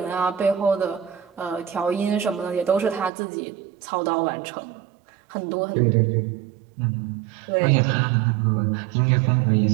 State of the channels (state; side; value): drops out; left; at 3.1 s